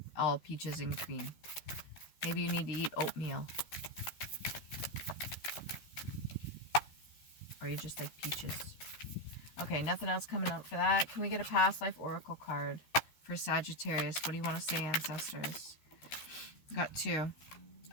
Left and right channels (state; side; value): late; right; 13 ms